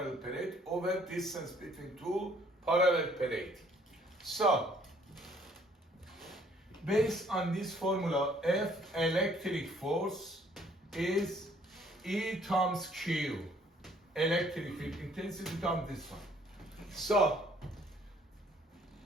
plates over distance between two parallel plates. So based on this formula, F electric force is E times Q. electric field intensity times this one. So,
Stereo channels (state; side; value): normal; both; correlation 0.61